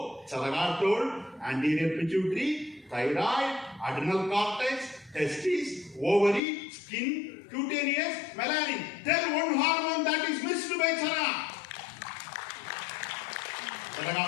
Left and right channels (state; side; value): drops out; right; at 6.4 s